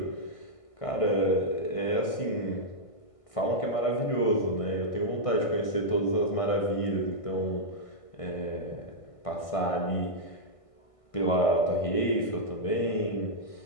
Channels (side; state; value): right; late; 1.6 ms